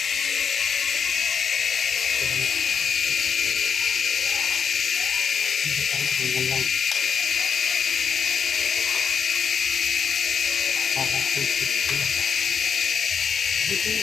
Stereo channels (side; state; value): right; quieter; 6.6 dB